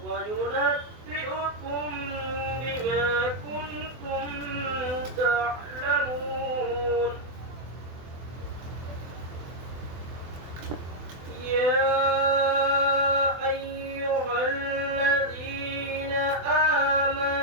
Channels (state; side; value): late; left; 24 ms